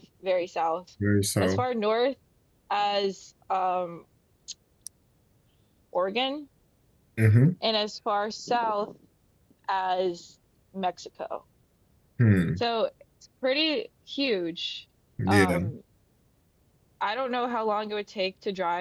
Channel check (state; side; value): identical; both; correlation 1.00